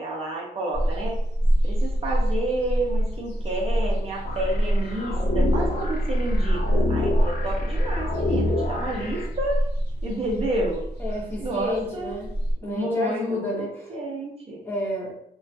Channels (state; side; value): normal; both; correlation 0.79